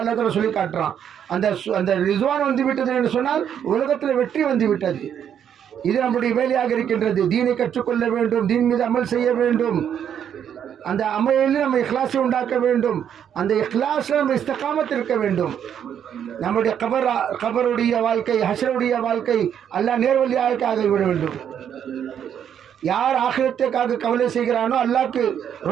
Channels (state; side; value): quieter; left; 8.9 dB